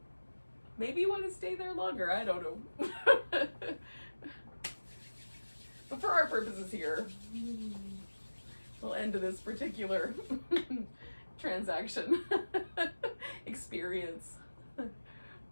Maybe you want to stay there longer, I don't know. But for our purposes here, we'll end this particular transaction experience.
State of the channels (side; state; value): both; inverted; correlation -1.00